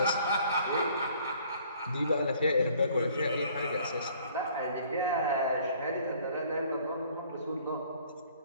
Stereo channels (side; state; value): both; inverted; correlation -0.57